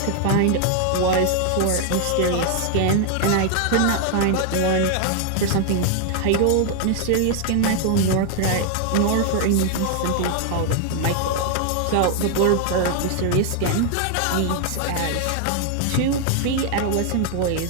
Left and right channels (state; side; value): different; both; correlation 0.00